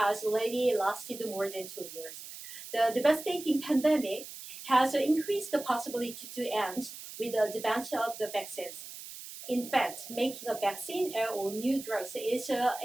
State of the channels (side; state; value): right; noise; hiss, 12 dB below the sound